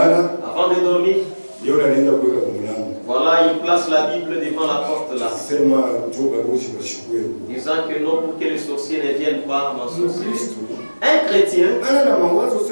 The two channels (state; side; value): inverted; both; correlation -1.00